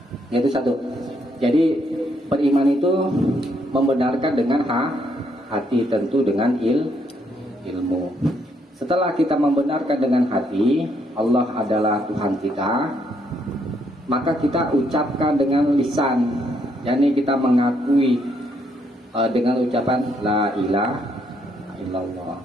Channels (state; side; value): normal; both; correlation 0.73